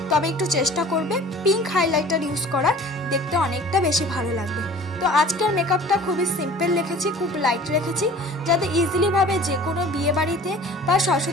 তবে একটু চেষ্টা করবে পিঙ্ক হাইলাইটার ইউজ করার, দেখতে অনেকটা বেশি ভালো লাগবে। তো আজকের মেকআপটা খুবই সিম্পল রেখেছি, খুব লাইট রেখেছি, যাতে ইজিলিভাবে যে কোনো বিয়ে বাড়িতে বা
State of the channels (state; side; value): normal; both; correlation 0.45